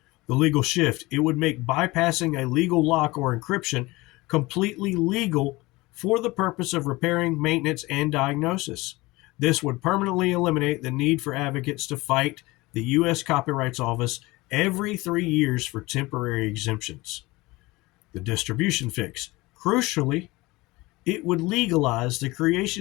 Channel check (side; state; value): right; quieter; 21.5 dB